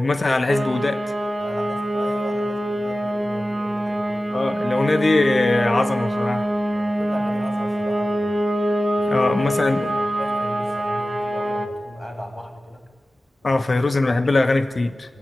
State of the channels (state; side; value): normal; both; correlation 0.95